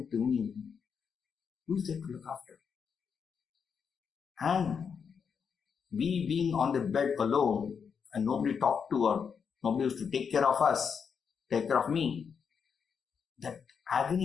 to me, who is there to look after? And we being on the bed alone and nobody talked to or nobody was to take care of us, take care of me, that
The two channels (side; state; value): right; quieter; 6.5 dB